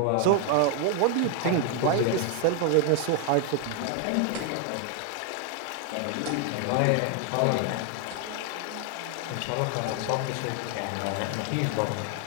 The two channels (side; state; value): both; different; correlation 0.00